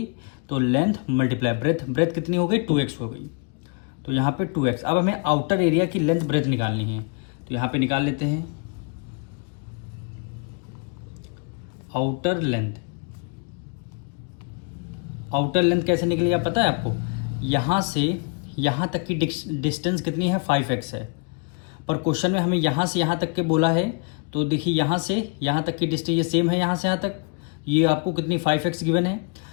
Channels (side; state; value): right; quieter; 34.6 dB